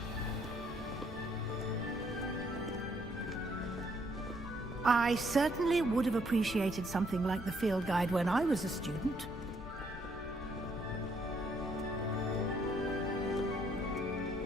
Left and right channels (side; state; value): left; noise; rumble, 12 dB below the sound